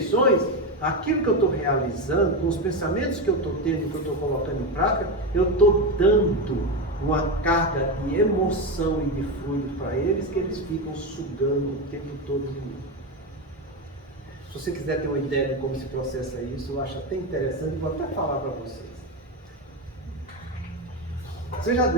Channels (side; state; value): both; normal; correlation 0.14